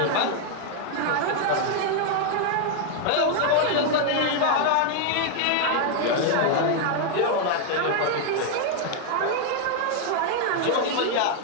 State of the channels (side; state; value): both; different; correlation 0.00